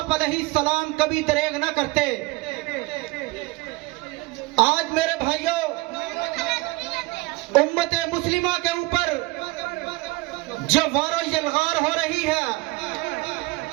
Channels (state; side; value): quieter; left; 22.4 dB